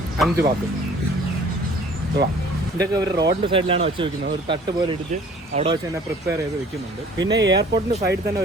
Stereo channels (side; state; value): both; normal; correlation 0.52